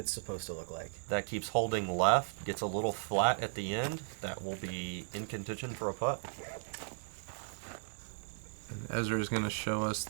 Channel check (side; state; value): left; silent; digital silence